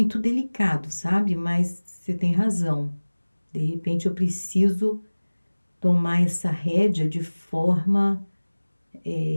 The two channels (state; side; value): inverted; both; correlation -1.00